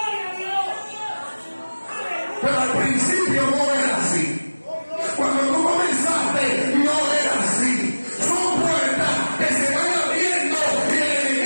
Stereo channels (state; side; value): inverted; both; correlation -1.00